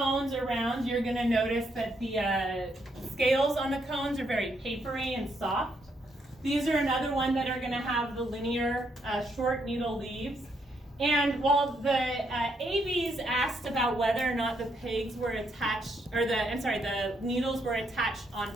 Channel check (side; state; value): both; normal; correlation 0.76